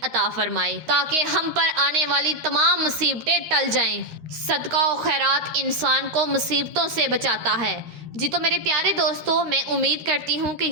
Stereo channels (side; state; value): left; late; 13 ms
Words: عطا فرمائے تاکہ ہم پر آنے والی تمام مصیبتیں ٹل جائیں۔ صدقہ و خیرات انسان کو مصیبتوں سے بچاتا ہے۔ جی تو میرے پیارے دوستو، میں امید کرتی ہوں کہ